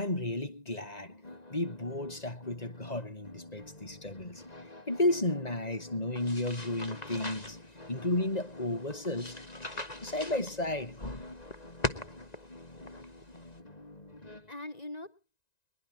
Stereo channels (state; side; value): late; right; 1.9 ms